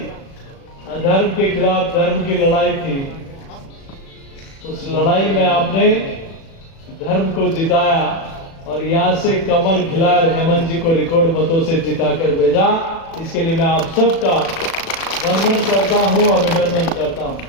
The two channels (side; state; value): right; late; 36 ms